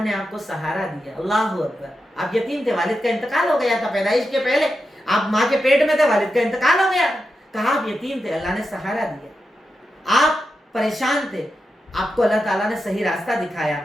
نے آپ کو سہارا دیا؟ اللہ اکبر، آپ یتیم تھے، والد کا انتقال ہو گیا تھا پیدائش کے پہلے، آپ ماں کے پیٹ میں تھے، والد کا انتقال ہو گیا، کہا آپ یتیم تھے، اللہ نے سہارا دیا۔ آپ پریشان تھے، آپ کو اللہ تعالیٰ نے صحیح راستہ دکھایا۔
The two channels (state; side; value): normal; both; correlation 0.88